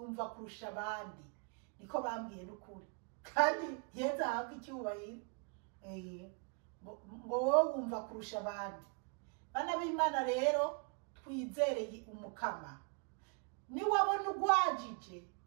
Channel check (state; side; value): quieter; left; 37.5 dB